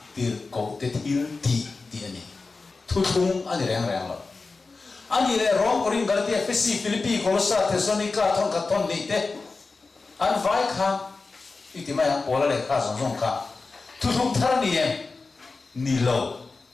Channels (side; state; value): right; quieter; 4.0 dB